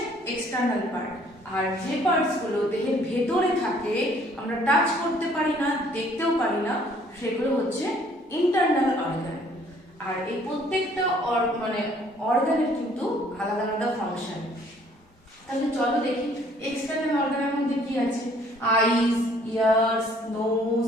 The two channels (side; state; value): both; normal; correlation 0.60